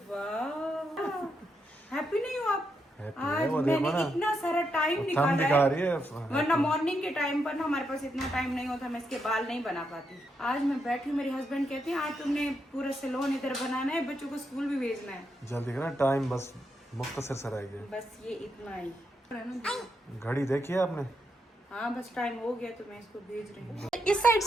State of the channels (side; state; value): both; normal; correlation 0.82